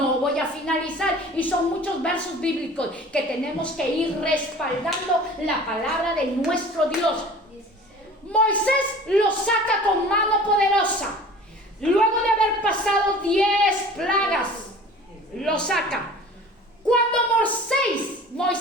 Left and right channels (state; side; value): normal; both; correlation 0.43